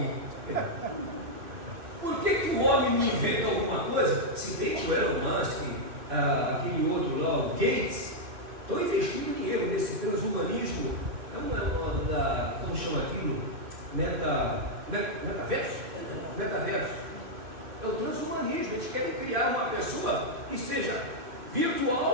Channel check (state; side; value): late; left; 2.6 ms